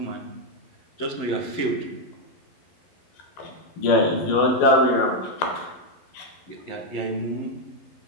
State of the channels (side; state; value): right; late; 11 ms